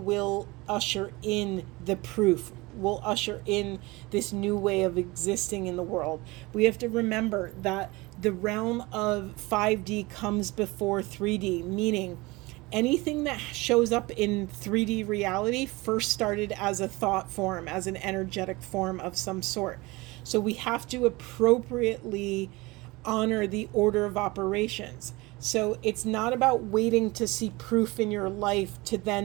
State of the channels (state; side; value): quieter; left; 22.8 dB